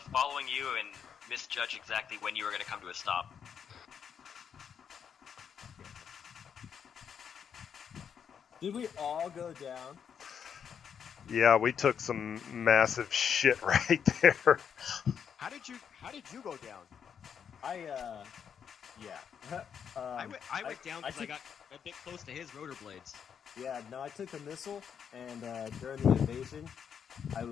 following you and misjudged exactly when you were going to come to a stop. Did we all go down? Yeah, we took some massive shit right there. How did you go down? Yeah. I went down because I took- got a bit close to his rotor blades. Yeah, no, I took the missile, and during the invasion, I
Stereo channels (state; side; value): quieter; right; 7.6 dB